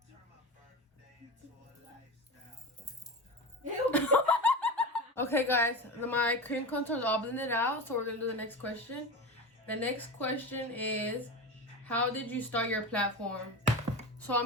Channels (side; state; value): both; normal; correlation 0.25